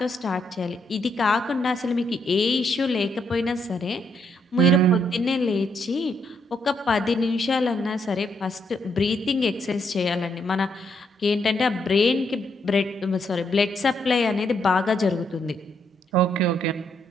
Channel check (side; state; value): both; normal; correlation 0.75